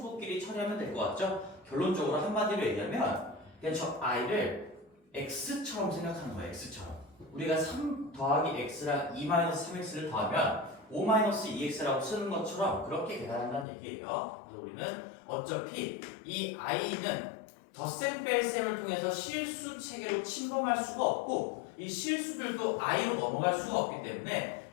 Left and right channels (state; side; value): drops out; right; at 13.7 s